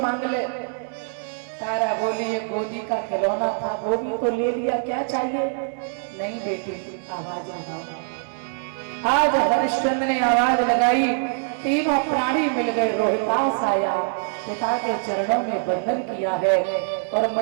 ले। तारा बोली ये गोदी का खिलौना था वो भी तो ले लिया, क्या चाहिए? नहीं बेटी आवाज लगाओ। आज हरिश्चंद्र ने आवाज लगाई, तीनों प्राणी मिल गए। रोहितास आया, पिता के चरणों में बंधन किया है और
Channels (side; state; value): left; silent; digital silence